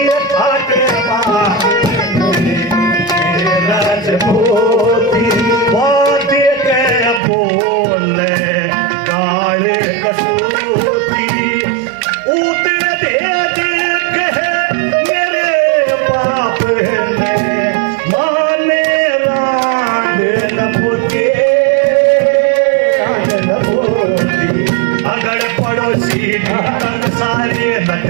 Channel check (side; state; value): left; drops out; at 7.2 s